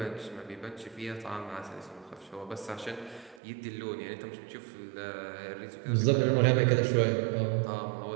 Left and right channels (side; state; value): left; drops out; at 3.4 s